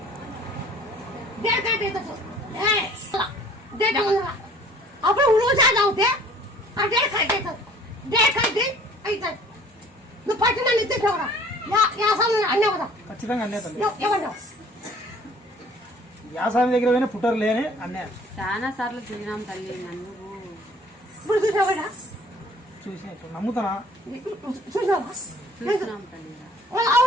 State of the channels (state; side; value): normal; both; correlation 0.53